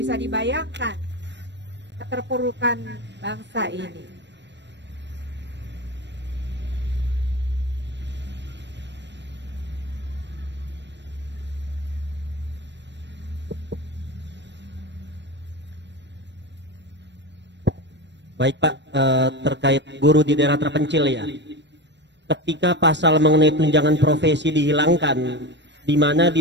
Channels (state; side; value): late; left; 0.52 ms